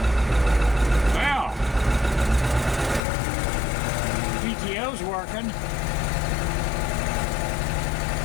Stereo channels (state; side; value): drops out; right; at 3.0 s